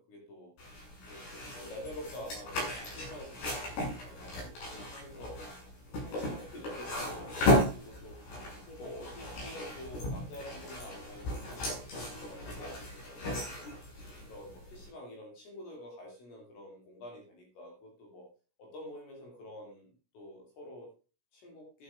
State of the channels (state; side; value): late; right; 16 ms